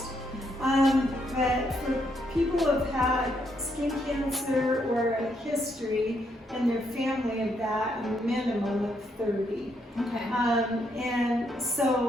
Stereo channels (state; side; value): normal; both; correlation 0.75